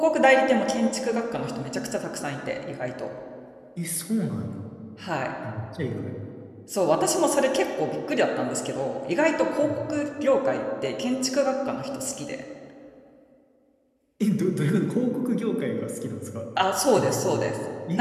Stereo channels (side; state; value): both; identical; correlation 1.00